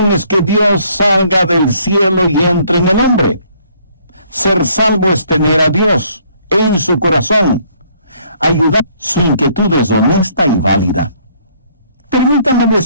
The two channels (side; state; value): both; inverted; correlation -0.64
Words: es que Dios salga del cielo y entre en el hombre. Ser salvo es tener a Dios en su corazón. Ayudar. Su inquietud es honesta y válida. Permítame